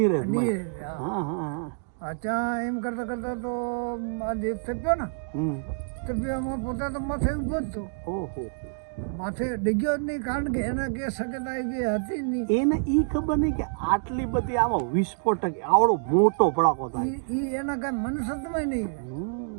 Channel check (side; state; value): left; silent; digital silence